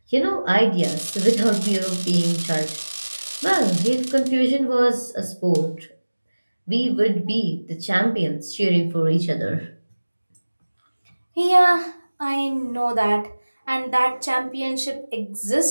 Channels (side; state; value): both; inverted; correlation -1.00